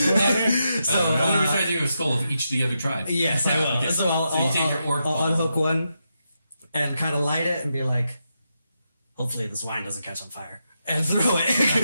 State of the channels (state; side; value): inverted; both; correlation -0.85